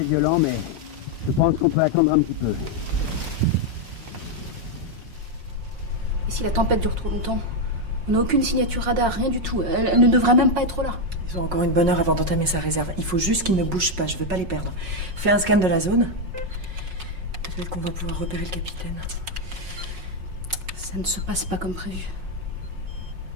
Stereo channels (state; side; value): late; left; 5.4 ms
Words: mais je pense qu'on peut attendre un petit peu. Et si la tempête dure trop longtemps? On n'a aucune signature radar, rien du tout. Elle ne devrait même pas être là. Ils ont encore une bonne heure avant d'entamer sa réserve. Il faut juste qu'ils ne bougent pas, je veux pas les perdre. Fais un scan de la zone. Peut-être qu'on va pouvoir repérer le capitaine. Ça ne se passe pas comme prévu.